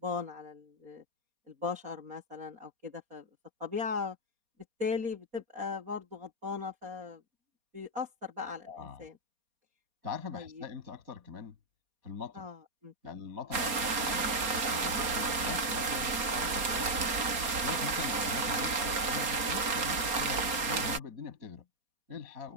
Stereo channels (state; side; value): late; left; 4.2 ms